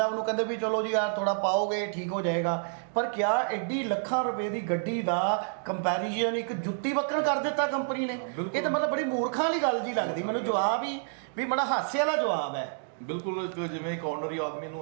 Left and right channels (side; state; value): left; silent; digital silence